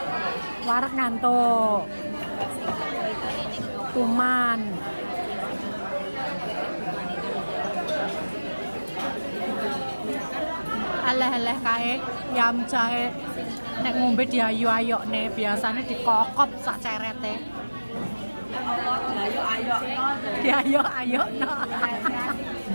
Warak ngantuk. Kuman. Aleh-aleh kae yam jahe nek ngombe diayu-ayok nih, biasanya dikokop sak cerete. Diayu-ayok no.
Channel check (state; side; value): inverted; both; correlation -1.00